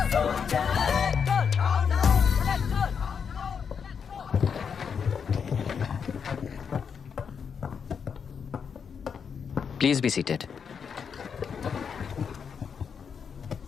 Please be seated.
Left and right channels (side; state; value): right; quieter; 6.6 dB